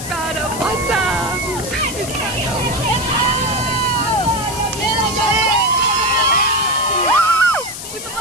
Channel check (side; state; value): left; noise; hiss, 9 dB below the sound